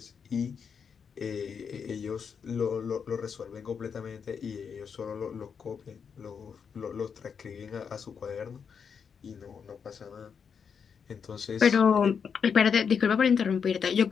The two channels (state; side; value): quieter; right; 6.6 dB